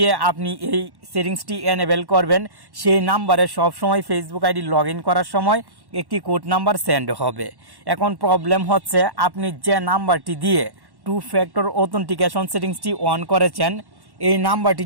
আপনি এই সেটিংসটি এনেবেল করবেন সেই নাম্বারে সবসময় ফেসবুক আইডি লগ ইন করার সময় একটি কোড নাম্বার সেন্ড হবে। এখন প্রবলেম হচ্ছে আপনি যে নাম্বারটি দিয়ে 2 ফ্যাক্টর অথেন্টিকেশন সেটিংসটি অন করেছেন এই নাম্বারটি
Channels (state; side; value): late; left; 1.1 ms